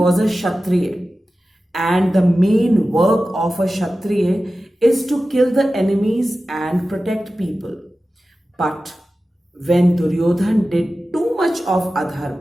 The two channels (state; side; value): normal; both; correlation 0.95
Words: a Kshatriya, and the main work of a Kshatriya is to kill the enemies and protect people. But when Duryodhan did too much of